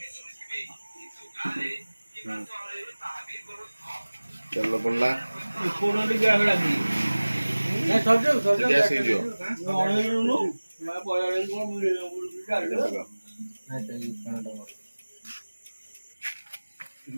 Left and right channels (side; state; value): both; inverted; correlation -1.00